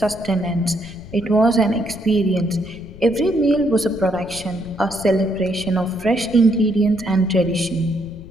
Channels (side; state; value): left; noise; rumble, 17 dB below the sound